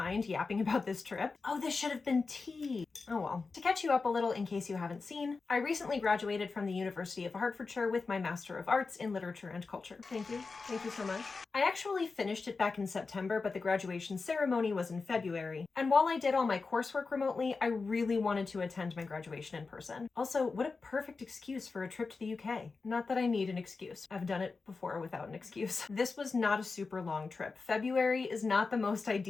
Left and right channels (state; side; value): quieter; right; 4.3 dB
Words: yapping about this trip. Oh, this should have been tea. Oh well. To catch you up a little in case you haven't seen, I recently graduated from the University of Hertfordshire with my Master of Arts in Literature and Culture. Thank you. Thank you so much. I actually finished it back in September, but the graduation ceremony was in February. And while I did all my coursework remotely, I really wanted to attend my graduation in person. Also, what a perfect excuse for a trip to the UK. Not that I need an excuse. I've done it before without an excuse. This was not a super long trip. February is not the most